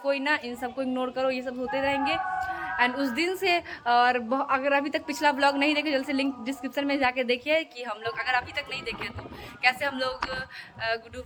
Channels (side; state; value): both; identical; correlation 1.00